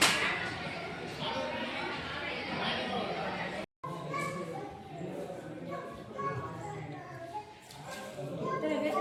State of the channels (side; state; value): both; identical; correlation 1.00